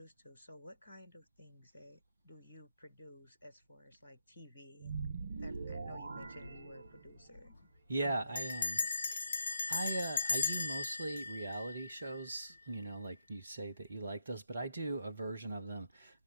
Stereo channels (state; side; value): inverted; both; correlation -0.81